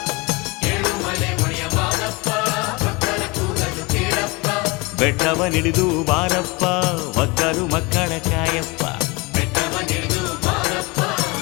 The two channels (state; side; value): quieter; right; 26.0 dB